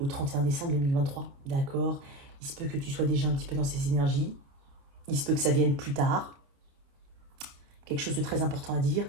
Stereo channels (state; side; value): late; left; 28 ms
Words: au 31 décembre 2023, d'accord? Il se peut que tu sois déjà un petit peu dans ces énergies. Il se peut que ça vienne plus tard. Quelque chose de très important à dire,